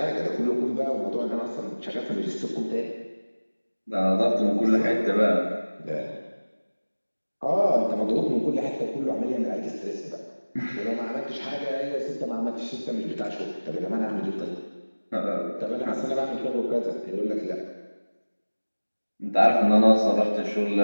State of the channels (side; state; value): both; inverted; correlation -1.00